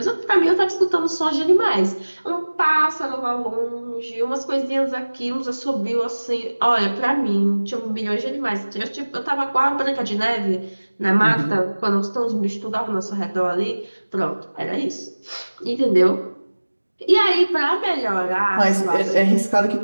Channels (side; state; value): both; inverted; correlation -1.00